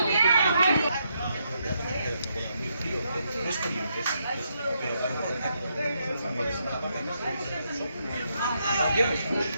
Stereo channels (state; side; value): inverted; both; correlation -0.78